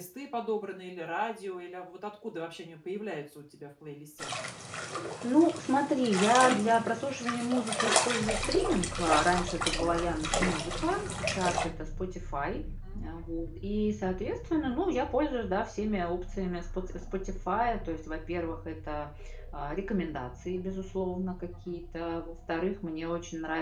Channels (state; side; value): identical; both; correlation 1.00